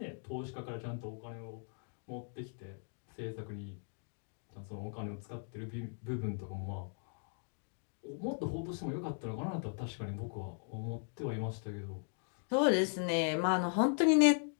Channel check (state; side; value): silent; right; 52 dB below the other